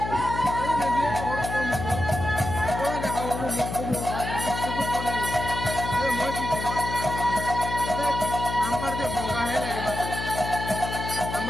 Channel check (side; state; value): left; noise; hum, 6 dB below the sound